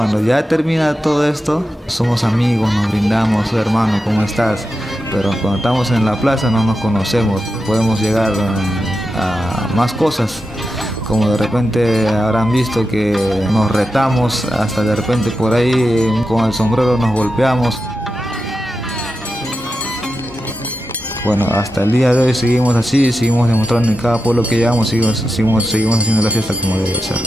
ya termina todo esto, somos amigos, nos brindamos, hermano, ¿cómo estás? Pero cuando estamos en la plaza no nos conocemos, podemos llegar a más cosas, como de repente habrán visto que nos retamos, hasta de repente por ahí con el sombrero nos golpeamos. Bueno, hasta el día de hoy seguimos así, seguimos demostrando en cada pueblo que llegamos, seguimos haciendo la fiesta como debe ser.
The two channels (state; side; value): normal; both; correlation 0.89